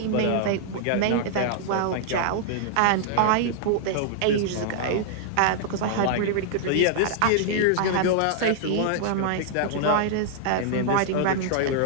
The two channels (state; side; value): different; both; correlation -0.01